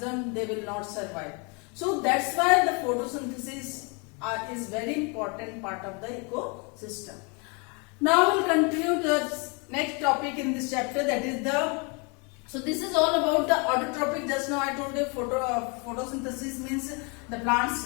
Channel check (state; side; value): quieter; right; 32.9 dB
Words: they will not survive. So that's why the photosynthesis is very important part of the ecosystem. Now we'll continue the next topic in this chapter, that is so this is all about the autotrophic. Just now I told you photosynthesis means the